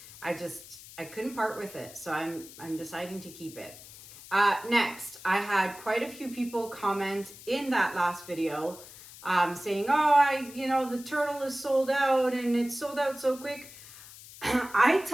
I couldn't part with it, so I'm deciding to keep it. Next, I had quite a few people comment in that last video saying, oh, the turtle is sold out and it's sold out so quick. I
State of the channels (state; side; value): noise; left; hiss, 17 dB below the sound